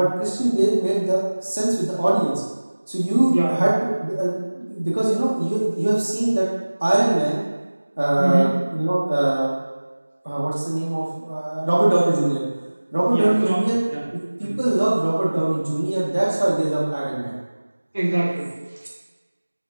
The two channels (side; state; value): both; inverted; correlation -1.00